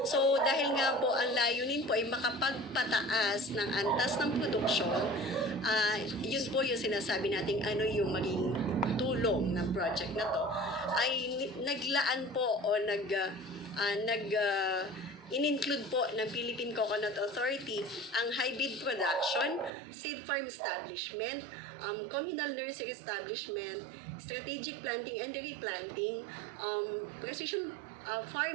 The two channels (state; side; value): drops out; left; at 19.7 s